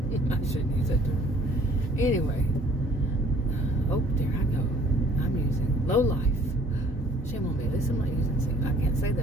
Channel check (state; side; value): normal; both; correlation 0.56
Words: shouldn't use that term. Anyway. Oh, there I go. I'm using low life. Shame on me. At least I'm not using see. I can't say